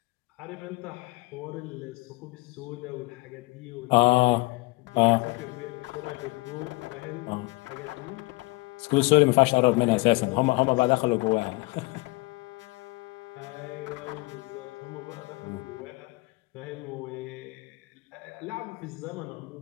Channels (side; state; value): right; quieter; 24.2 dB